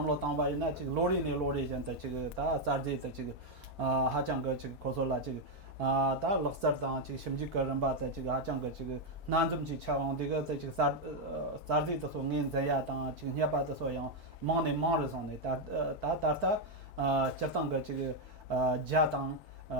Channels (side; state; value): both; normal; correlation 0.01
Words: 당바이나这个로리 전다这个다 자르데这个하장거这个고솔라这个다 럭서당这个심지거런바다这个하장거这个난좀지 차원데가这个자르데 또 닌자야당这个냐바다 소양 망네 망르송네 다다다 저당거这个자당